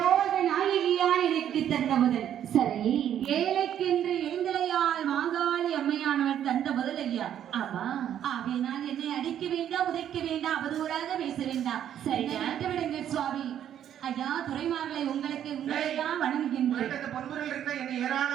நாயகியால் எனக்கு தந்த முதல். சரி, ஏழைக்கென்று எழுந்தலையால் மாகாளி அம்மையானவள் தந்த முதல் ஐயா. ஆமா, ஆகையினால் என்னை அடிக்க வேண்டாம், உதைக்க வேண்டாம், அவதூறாக பேச வேண்டாம். சரி, விடுங்க சுவாமி. ஐயா துறைமார்களை உங்களுக்கு உங்களைதான் வணங்குகின்றேன்.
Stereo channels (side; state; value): left; quieter; 10.2 dB